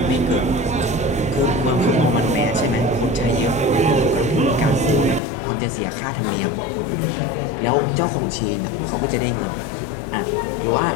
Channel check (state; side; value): drops out; right; at 5.2 s